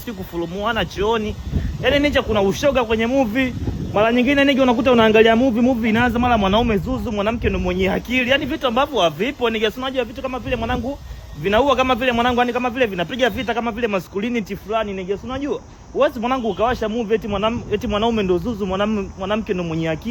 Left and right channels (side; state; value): both; identical; correlation 1.00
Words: kufurumuana chooni. Yaani ninja kuna ushoga kwenye movie. Mara nyingine nige unakuta unaangalia movie inaanza mara mwanaume zuzu, mwanamke ndo mwenye akili. Yaani vitu ambavyo havipo nige, si unajua vitu kama vile mwanangu vinaua kama vile mwanangu, yani kama vile vinapiga vita kama vile masculinity fulani nige, si unajua. Uwezi mwanangu ukawasha movie eti mwanaume ndo zuzu, mwanamke ndo mwenye